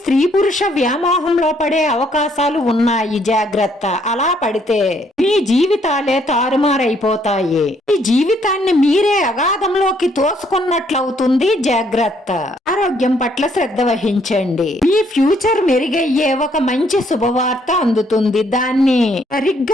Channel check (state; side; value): normal; both; correlation 0.68